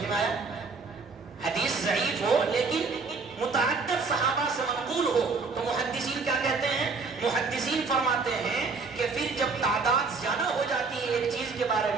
میں آیا؟ حدیث ضعیف ہو لیکن متعدد صحابہ سے منقول ہو تو محدثین کیا کہتے ہیں؟ محدثین فرماتے ہیں کہ پھر جب تعداد زیادہ ہو جاتی ہے ایک چیز کے بارے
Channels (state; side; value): quieter; left; 4.5 dB